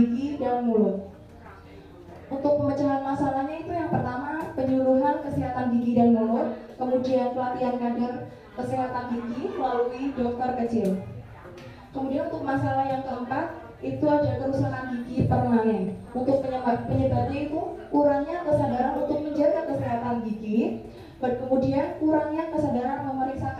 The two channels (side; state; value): both; identical; correlation 1.00